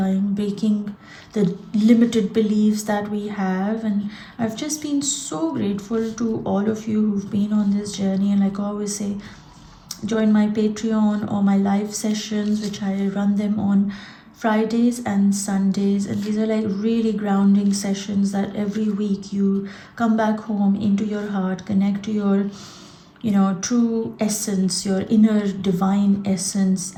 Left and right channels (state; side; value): identical; both; correlation 1.00